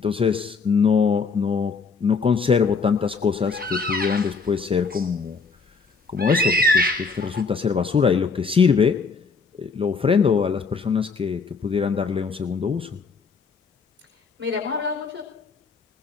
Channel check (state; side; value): quieter; right; 4.9 dB